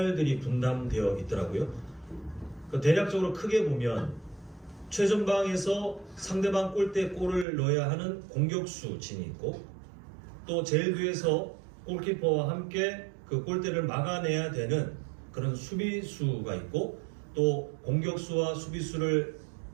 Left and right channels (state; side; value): drops out; left; at 7.5 s